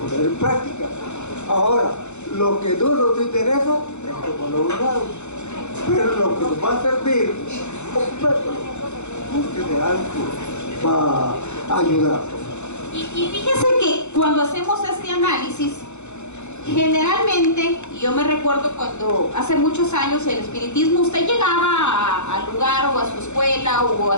poner en práctica. Ahora, lo que no nos interesa es como lo usamos, pero lo que nos va a servir, búsquede algo para ayudar. Y fíjese que cuando hacemos este análisis, generalmente, y yo me recuerdo cuando hace muchos años el espiritismo, usted llegaba al lugar o a su escuela o a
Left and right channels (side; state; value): right; late; 0.83 ms